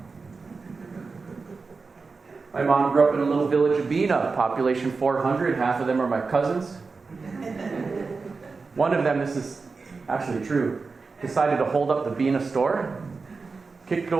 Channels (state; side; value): quieter; left; 4.4 dB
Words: My mom grew up in a little village of Bena, population 400. Half of them are my cousins. One of them, this is actually true, decided to hold up the Bena store, kicked